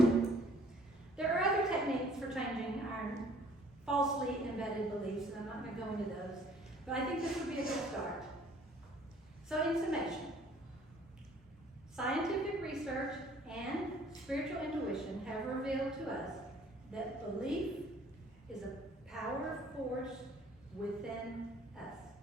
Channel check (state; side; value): normal; both; correlation 0.56